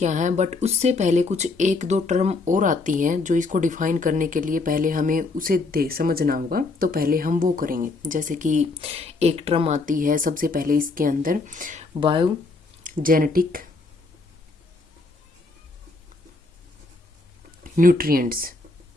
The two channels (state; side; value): quieter; right; 3.6 dB